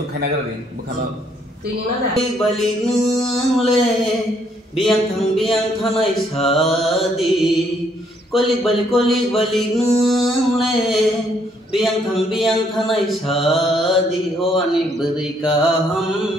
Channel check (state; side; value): normal; both; correlation 0.69